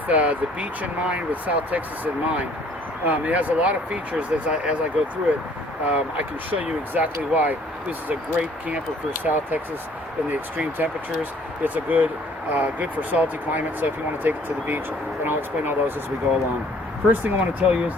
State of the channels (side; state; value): both; normal; correlation 0.58